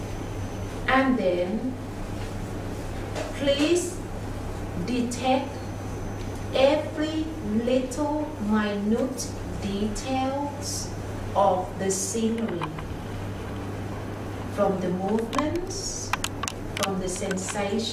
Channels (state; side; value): identical; both; correlation 1.00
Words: And then please detect every little minute details of the scenery, from the movements, from the